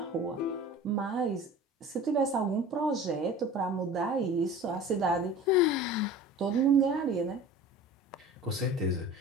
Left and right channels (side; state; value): both; normal; correlation 0.40